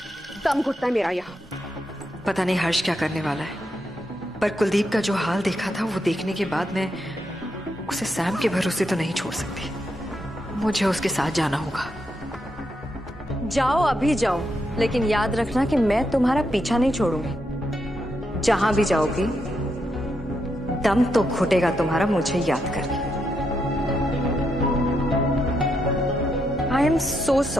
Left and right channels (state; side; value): normal; both; correlation 0.81